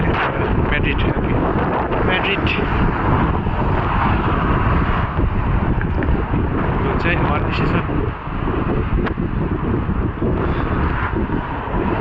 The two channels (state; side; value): identical; both; correlation 1.00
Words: मैले म्याड्रिड म्याड्रिड यो चाहिँ अर्गनाइजेसन